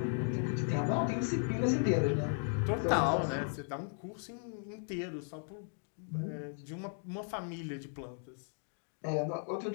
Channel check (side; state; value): right; silent; 54 dB below the other